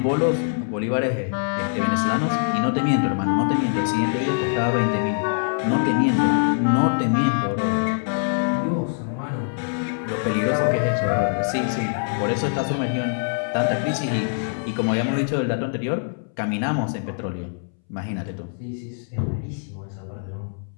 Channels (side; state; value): right; silent; 63 dB below the other